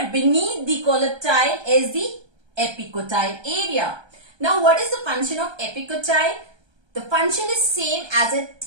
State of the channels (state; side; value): late; left; 1.3 ms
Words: beneath the coleoptile is the epicotyle area. Now, what is the function of epicotyle? The function is same as it